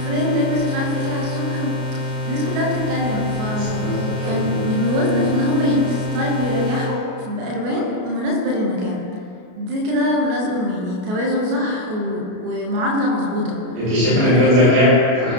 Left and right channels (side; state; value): left; late; 33 ms